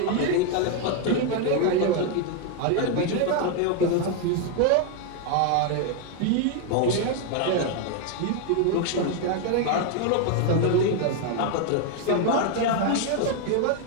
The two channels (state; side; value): different; both; correlation 0.01